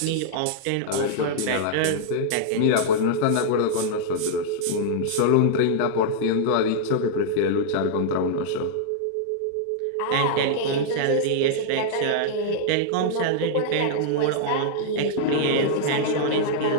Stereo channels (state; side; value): different; both; correlation -0.01